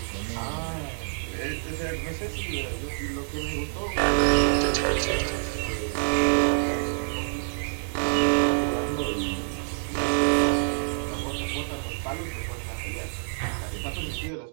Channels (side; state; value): left; silent; digital silence